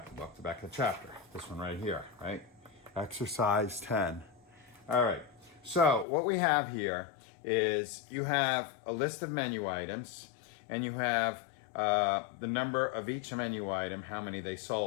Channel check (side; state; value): right; drops out; at 6.1 s